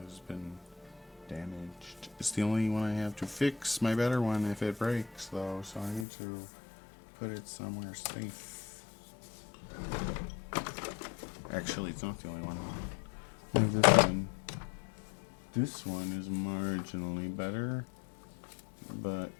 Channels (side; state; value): right; drops out; at 6.1 s